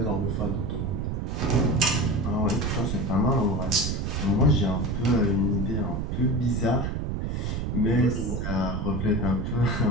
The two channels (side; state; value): right; noise; rumble, 1 dB below the sound